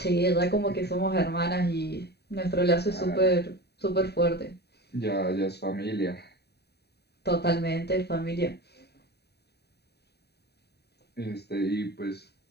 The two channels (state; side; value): late; right; 0.48 ms